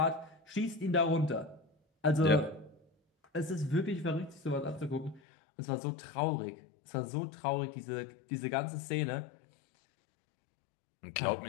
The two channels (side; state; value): right; drops out; at 5.2 s